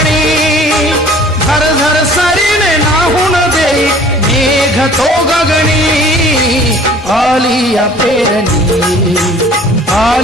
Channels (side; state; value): both; normal; correlation 0.50